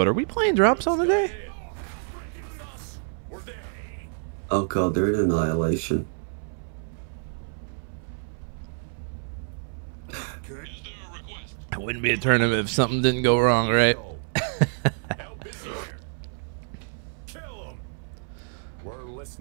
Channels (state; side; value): silent; left; 60 dB below the other